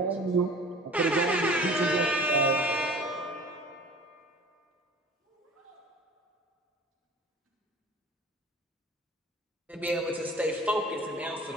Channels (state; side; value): normal; both; correlation 0.44